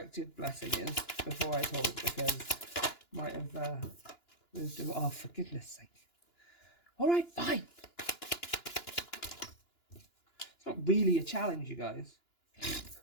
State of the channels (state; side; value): late; right; 2.9 ms